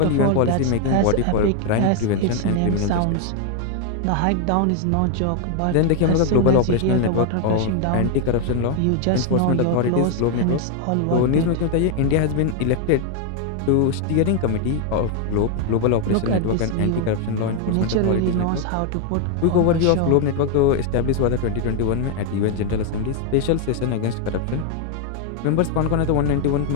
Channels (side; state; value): both; different; correlation 0.01